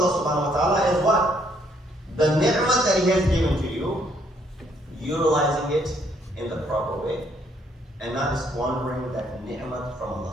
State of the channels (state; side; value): normal; both; correlation 0.68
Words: subhanahu wa ta'ala is what? The ni'mah that He has given to you, utilizing it in the proper way, and not squandering that ni'mah from